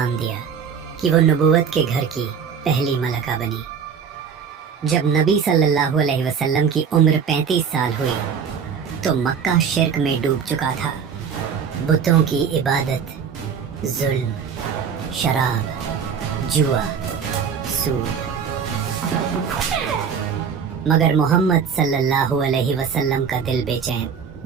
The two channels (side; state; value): left; quieter; 6.8 dB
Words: دیا کہ وہ نبوت کے گھر کی پہلی ملکہ بنی۔ جب نبی صلی اللہ علیہ وسلم کی عمر 35 سال ہوئی تو مکہ شرک میں ڈوب چکا تھا۔ بتوں کی عبادت، ظلم، شراب، جوا، سود۔ مگر محمد صلی اللہ علیہ وسلم کا دل بے چین۔